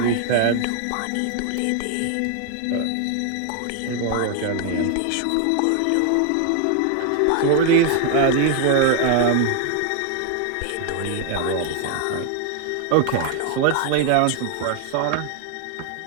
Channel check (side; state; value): both; different; correlation 0.00